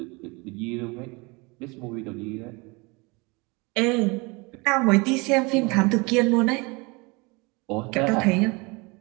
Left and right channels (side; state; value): left; quieter; 27.1 dB